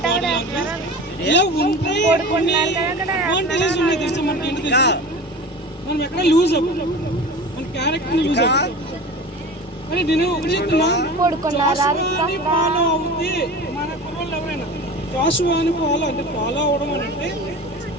ఇలా ఉంటాయి అడ్వాంటేజెస్ ఉన్నాయి తెలుసా మనకి. ఏంటి తెలుసా, మనం ఎక్కడ లూజ్ అవ్వం, మన క్యారెక్టర్ లూజ్ అవ్వం. కానీ నేను ఒకటి చెప్తున్నా, జాషువాని ఫాలో అవుతే మన కుర్రోళ్ళు ఎవరైనా జాషువాని ఫాలో అవ్వడం అని అంటే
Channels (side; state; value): both; normal; correlation 0.35